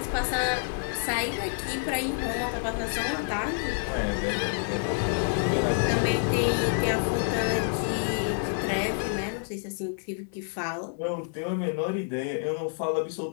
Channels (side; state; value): right; silent; digital silence